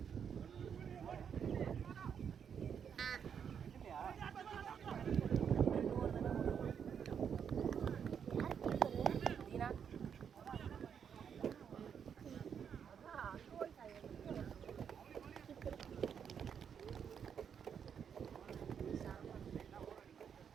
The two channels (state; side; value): quieter; left; 7.6 dB